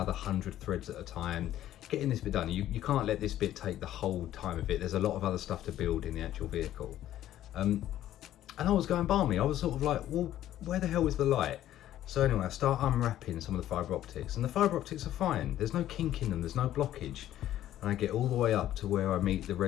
100 threads at a time, getting this bit done. You can't let this bit take the whole time of it. There's a lot of other stuff to build in the actual vehicle. And I was going balmy. I was sort of like, well, where the hell is the light? So anyway, I start unwrapping some of the fibre optics, and the fibre optics are fine. There's no kink in them, there's no blockage. And I get all the way up to where I meet the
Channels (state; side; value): quieter; right; 12.7 dB